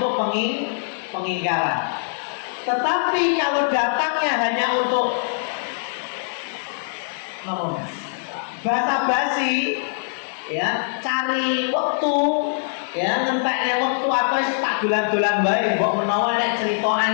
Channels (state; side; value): silent; right; digital silence